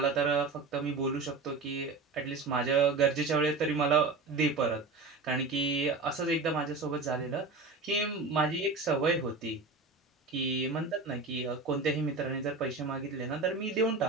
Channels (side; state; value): left; quieter; 3.9 dB